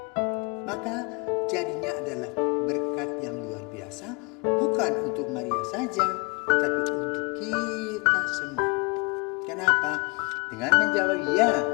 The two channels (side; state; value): right; quieter; 30.5 dB